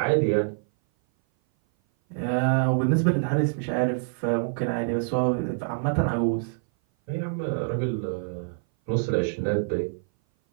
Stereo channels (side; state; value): left; silent; 58 dB below the other